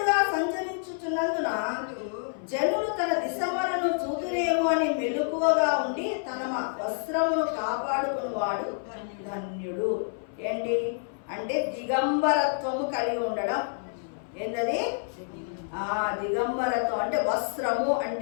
సంచరించుచున్నందున జనులు తన దిశమలను చూతురేమో అని మెలకువగా ఉండి తన వస్త్రమును కాపాడుకునేవాడు ధన్యుడు. ఏంటి అంటే దిగంబరత్వము కలిగి ఉండడం. ఏంటది? దిగంబరత్వం అంటే వస్త్రము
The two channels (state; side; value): silent; right; 57 dB below the other